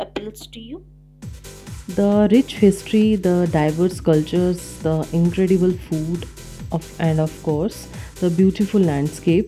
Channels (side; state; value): both; identical; correlation 1.00